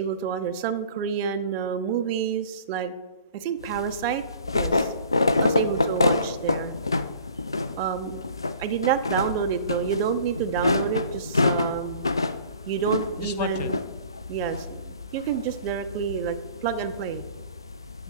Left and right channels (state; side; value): inverted; both; correlation -0.49